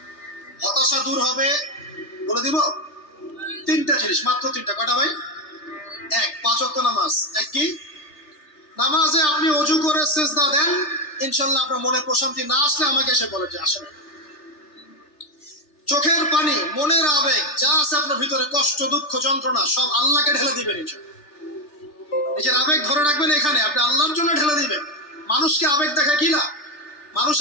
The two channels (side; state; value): right; late; 3.3 ms